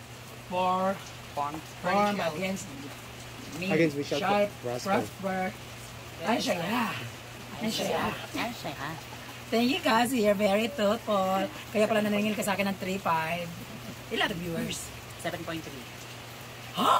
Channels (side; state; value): both; identical; correlation 1.00